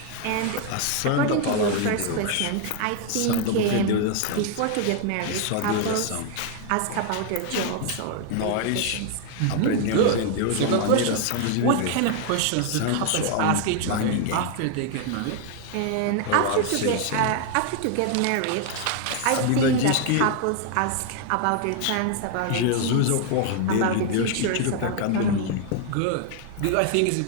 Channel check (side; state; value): both; different; correlation 0.00